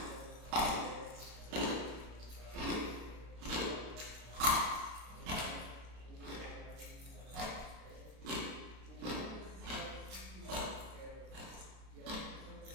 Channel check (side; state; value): left; late; 32 ms